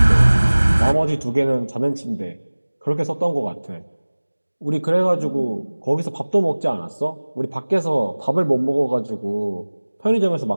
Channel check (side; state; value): both; inverted; correlation -1.00